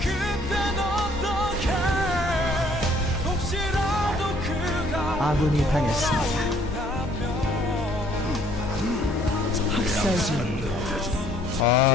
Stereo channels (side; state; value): both; normal; correlation 0.61